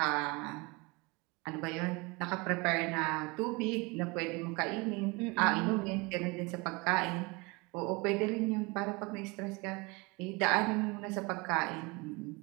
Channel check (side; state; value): left; quieter; 26.6 dB